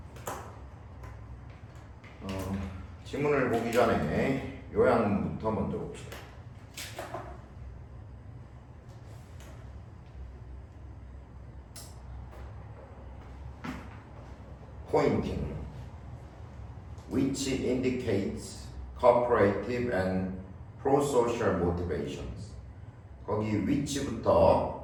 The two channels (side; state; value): both; identical; correlation 1.00